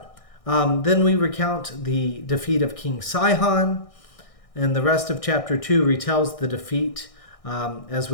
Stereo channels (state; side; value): late; right; 1.6 ms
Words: then we recount the defeat of King Sihon, and the rest of chapter 2 retells the defeat as